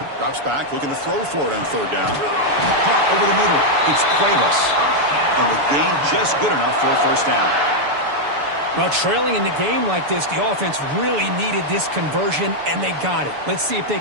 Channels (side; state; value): left; late; 6.9 ms